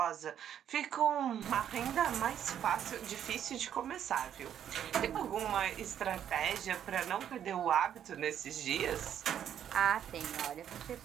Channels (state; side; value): quieter; left; 9.7 dB